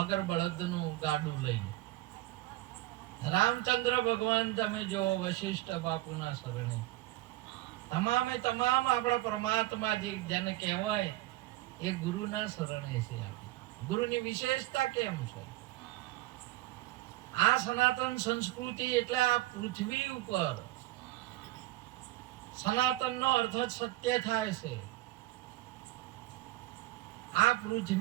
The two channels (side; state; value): left; quieter; 17.5 dB